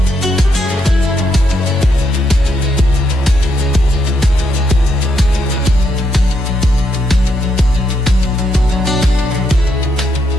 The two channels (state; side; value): normal; both; correlation 0.78